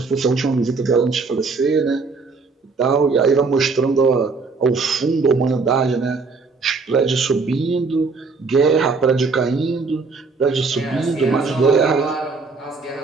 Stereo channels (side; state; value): left; quieter; 4.4 dB